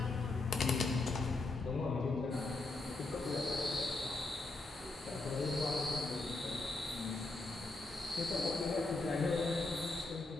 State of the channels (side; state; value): right; quieter; 3.2 dB